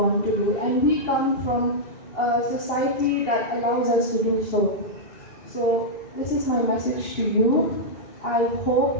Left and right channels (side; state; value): right; late; 2.8 ms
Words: to do, and we come from a society that allows us to do so. So this is my message to you. I